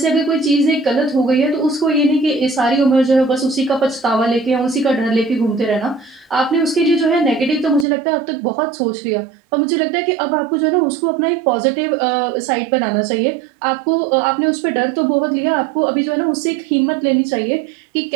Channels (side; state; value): left; drops out; at 7.9 s